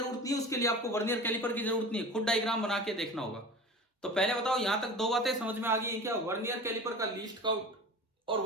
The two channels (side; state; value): both; normal; correlation 0.35